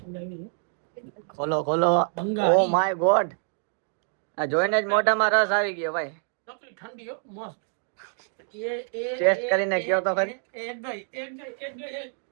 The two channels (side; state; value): left; silent; 60 dB below the other